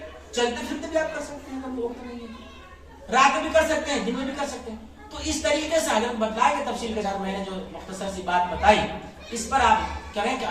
چلتے پھرتے بھی آپ کر سکتے ہیں, اگر وقت نہیں ہے, رات میں بھی کر سکتے ہیں, دن میں بھی کر سکتے ہیں. تو اس طریقے سے حضرت بتلائے کہ تفصیل کے ساتھ میں نے جو مختصر سی بات بتائی, اس پر آپ کریں کہ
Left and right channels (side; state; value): both; identical; correlation 1.00